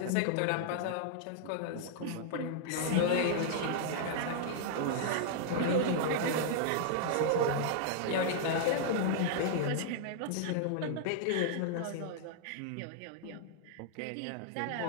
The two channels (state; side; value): different; both; correlation -0.01